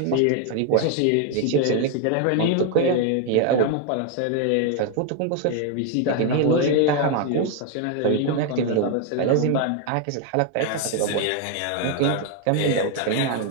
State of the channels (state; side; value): different; both; correlation 0.01